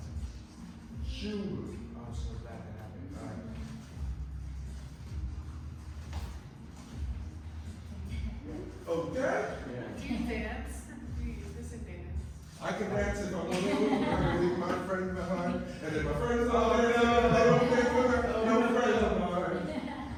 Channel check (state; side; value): identical; both; correlation 1.00